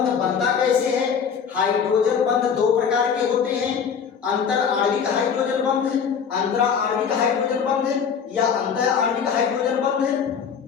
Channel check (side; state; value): right; quieter; 6.9 dB